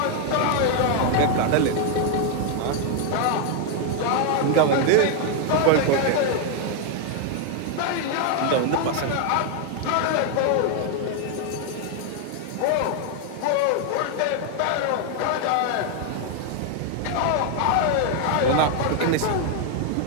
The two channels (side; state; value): both; different; correlation 0.00